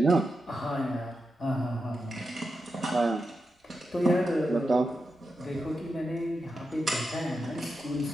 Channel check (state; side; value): normal; both; correlation 0.88